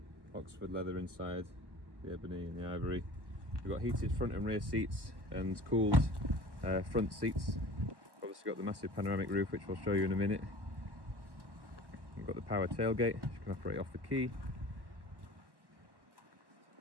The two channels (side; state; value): left; late; 1.1 ms